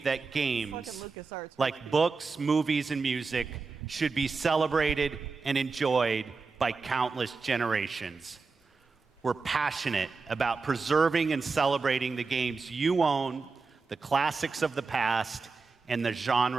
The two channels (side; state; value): left; quieter; 4.4 dB